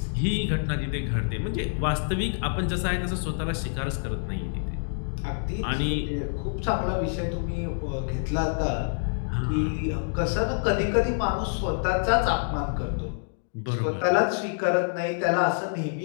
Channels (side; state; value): right; silent; digital silence